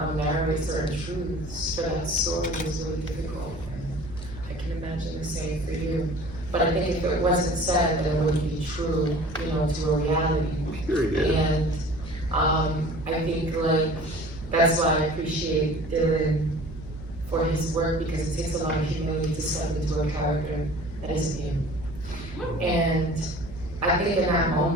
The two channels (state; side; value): noise; right; hum, 14 dB below the sound